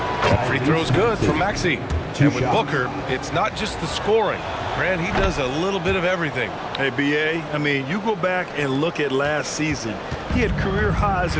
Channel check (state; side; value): identical; both; correlation 1.00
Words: Free throw's good from Maxey. And with Booker, it's not just the scoring. Grant, he does a little bit of everything. Hey, B.A., I mean, you go back and look at last season. He had career highs